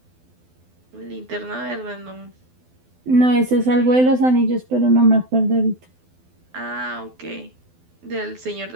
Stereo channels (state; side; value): late; left; 12 ms